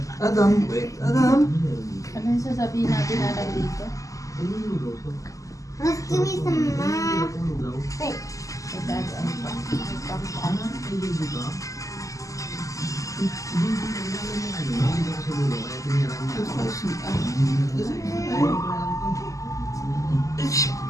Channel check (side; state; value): right; late; 0.16 ms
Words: Adam, wait, Adam. Ano yung sasabihin natin na lang dito? Let's give me some money. Wait.